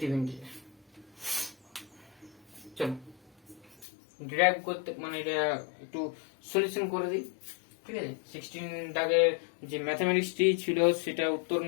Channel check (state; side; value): drops out; right; at 3.9 s